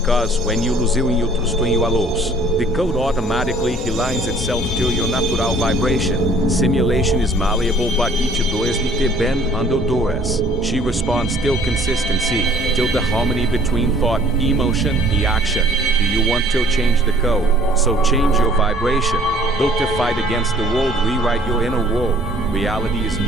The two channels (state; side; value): normal; both; correlation 0.55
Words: when you lose you trust in your loss, the code automatically aligns itself to your natural vibration. Simulation is malleable, but each does need to bend under duress. She responds till consistency, till the harmony between thought, emotion, and action. Do you want to change the code? So change your vibration. Don't fight against the world, rewrite your inner world. Reality is